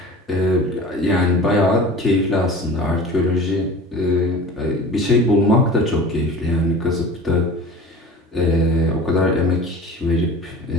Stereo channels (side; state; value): both; normal; correlation 0.38